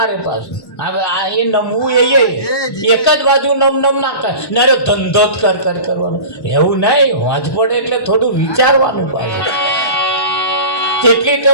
રે પાછું. હવે આ એ નમવું એ એક જ બાજુ નમ ના કરે ને ધંધો જ કરવાનો એવું નહીં. વાંચ પડે એટલે થોડું વિચારવાનું પાછું. તેટલી તો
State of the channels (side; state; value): right; late; 1.1 ms